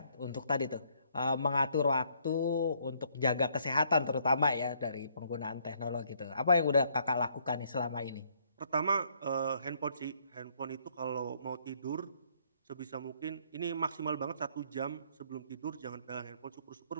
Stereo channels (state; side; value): inverted; both; correlation -0.67